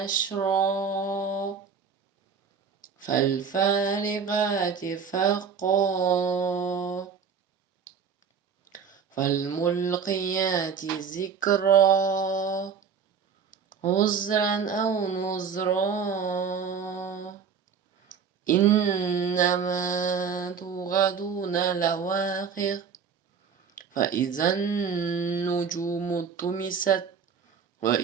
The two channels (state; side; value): quieter; left; 6.4 dB